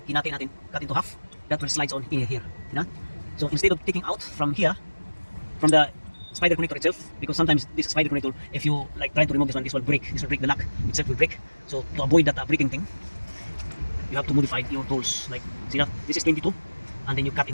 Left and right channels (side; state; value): both; inverted; correlation -1.00